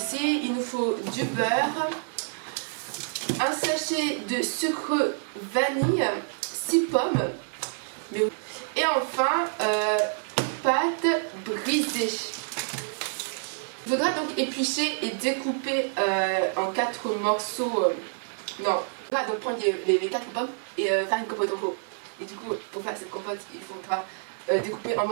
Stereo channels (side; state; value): left; silent; 60 dB below the other